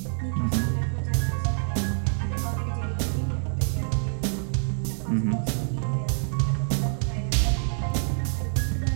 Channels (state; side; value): silent; left; 61 dB below the other